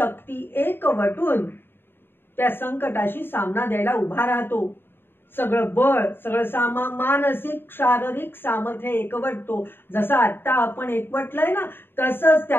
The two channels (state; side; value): late; right; 0.10 ms